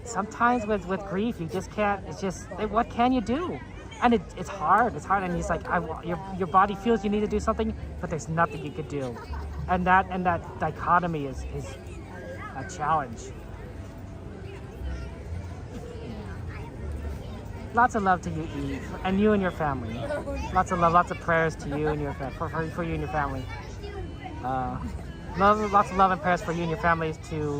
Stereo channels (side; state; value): both; identical; correlation 1.00